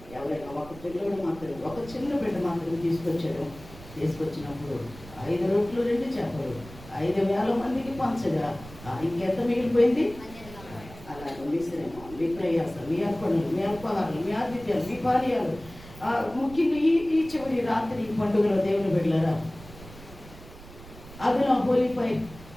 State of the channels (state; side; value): noise; right; rumble, 17 dB below the sound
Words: ఎవరైనా ఒక పిల్లడు మాత్రం, ఒక చిన్న బిడ్డ మాత్రం తీసుకొచ్చాడు. తీసుకొచ్చినప్పుడు 5 రొట్టెలు 2 చేపలు 5,000 మందికి పంచగా ఇంకెంత మిగిలిపోయింది? అలాగే మీ శ్రమ, మీ ప్రయాస, మీ అర్పణలు, మీ అల్పాహారాలు, మీ ఆతిథ్యాలు, మీ పానీయాలు, ముఖ్యంగా ఈ చివరి రాత్రి పండుగలో దేవుని బిడ్డలారా, అదన హోలీఫై